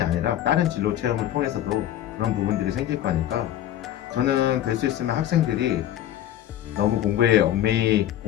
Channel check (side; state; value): right; quieter; 12.1 dB